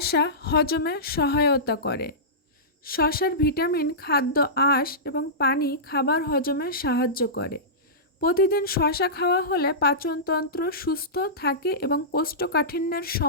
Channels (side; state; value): both; normal; correlation -0.18